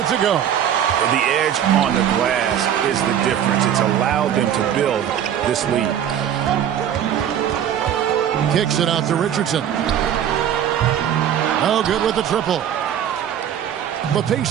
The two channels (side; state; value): left; quieter; 9.7 dB